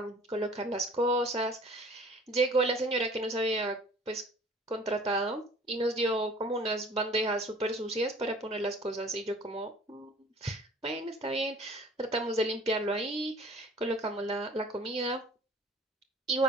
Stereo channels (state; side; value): normal; both; correlation 0.49